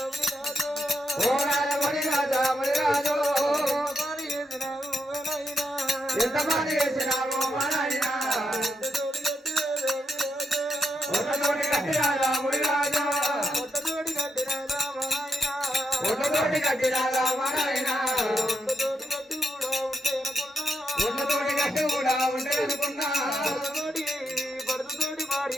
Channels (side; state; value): both; normal; correlation 0.82